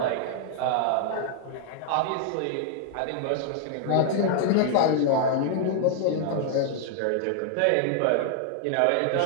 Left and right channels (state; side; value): different; both; correlation 0.00